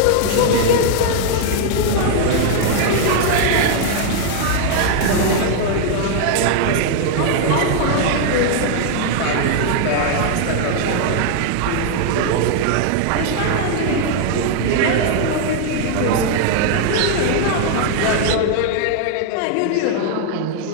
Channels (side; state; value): both; different; correlation 0.00